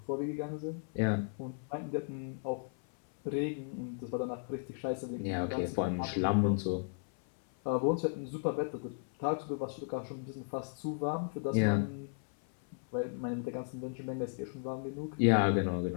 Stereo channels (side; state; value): right; silent; 54 dB below the other